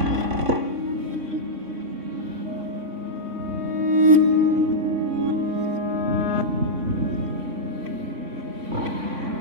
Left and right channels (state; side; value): late; left; 3.5 ms